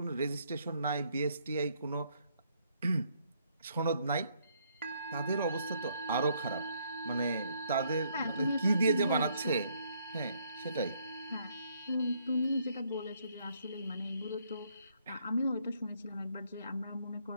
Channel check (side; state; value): both; inverted; correlation -0.69